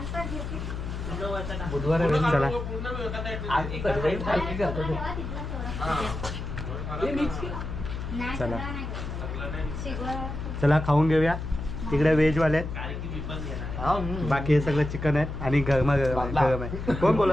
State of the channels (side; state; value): left; noise; hum, 6 dB below the sound